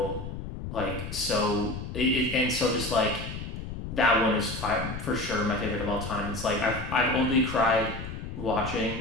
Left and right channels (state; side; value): noise; left; rumble, 8 dB below the sound